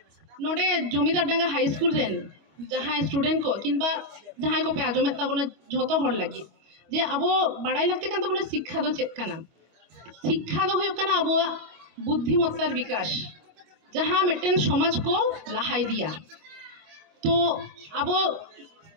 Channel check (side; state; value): left; late; 25 ms